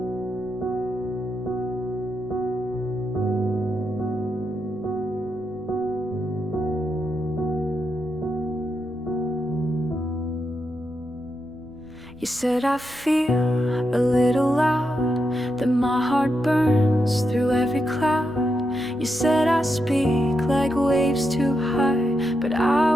You said I feel a little loud, that my heart burns through every cloud. You said I speak like waves too high, but I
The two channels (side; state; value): right; noise; rumble, 24 dB below the sound